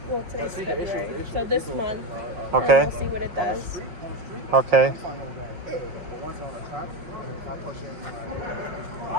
Well, today's February, so this month. Okay. And we'll see what it does. Okay. But once on the track, if I push in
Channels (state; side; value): late; left; 5.5 ms